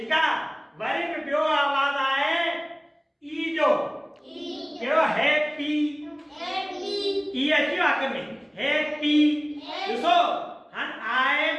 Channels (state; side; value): identical; both; correlation 1.00